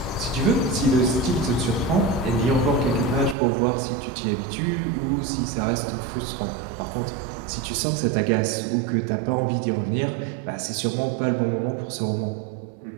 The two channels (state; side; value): drops out; left; at 3.4 s